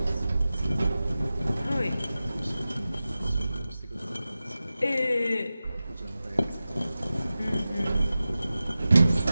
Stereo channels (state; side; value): inverted; both; correlation -0.95